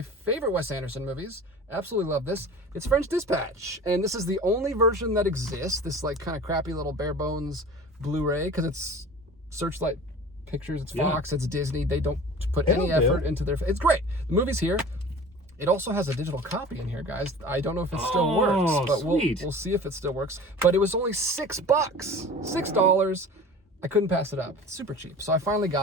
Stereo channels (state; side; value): normal; both; correlation 0.40